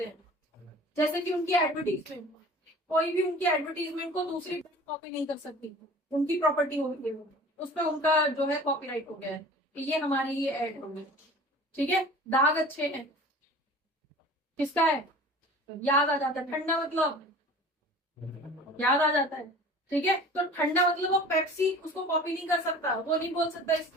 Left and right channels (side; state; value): both; normal; correlation 0.43